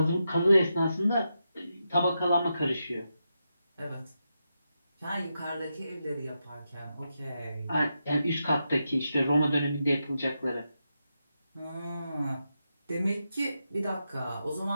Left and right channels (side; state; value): both; inverted; correlation -0.87